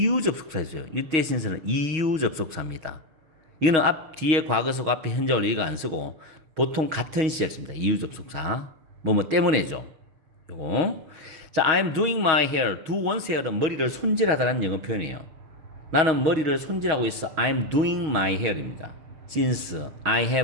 접속사였어요. 이때 since는 이유 접속사입니다. 이거는 뒤에 과거속 앞에 현재 완료 이거 안 쓰고 보통 같은 시제를 씁니다. 이유 접속사. 뭐뭐 때문에죠. 요거. 자, I'm doing my hair. do one's hair은 머리를 손질하다는 영어 표현이에요. 나는 머리를 손질하고 있어. I'm doing my hair입니다. Since I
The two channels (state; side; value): late; left; 6.3 ms